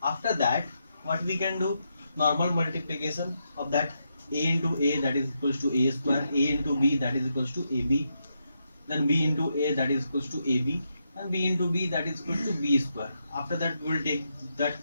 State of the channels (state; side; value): inverted; both; correlation -0.83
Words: After that, what we can do, normal multiplication of that a into a, that is equals to a square, a into b, that is equals to ab, then b into a, that is equals to ab, and b into b, that is equals to b square. After that, we will take that